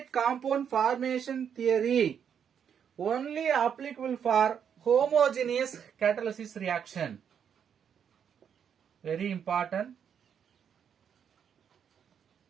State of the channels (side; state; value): left; quieter; 8.0 dB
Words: compound formation theory only applicable for homogeneous catalysis reaction. Very important.